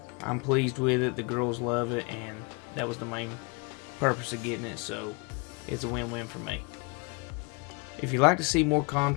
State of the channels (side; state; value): right; quieter; 31.7 dB